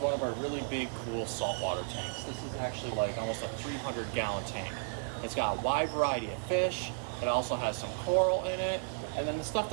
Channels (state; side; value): silent; left; digital silence